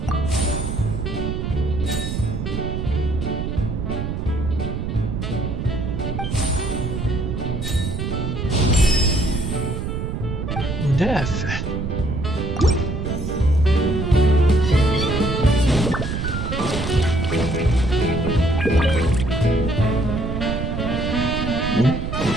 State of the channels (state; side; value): noise; right; rumble, 3 dB below the sound